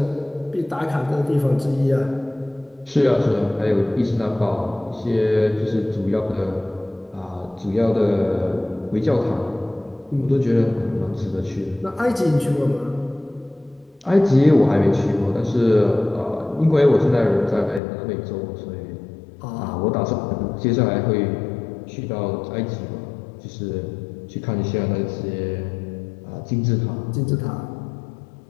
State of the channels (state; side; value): drops out; right; at 17.8 s